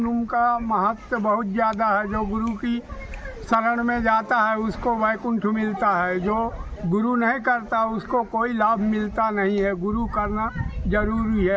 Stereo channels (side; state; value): both; identical; correlation 1.00